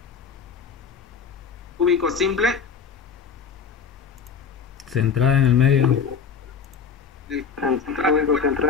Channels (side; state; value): right; quieter; 6.3 dB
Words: Cúbico simple. Centrada en el medio.